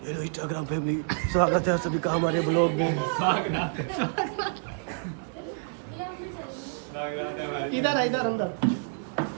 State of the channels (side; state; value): left; silent; 59 dB below the other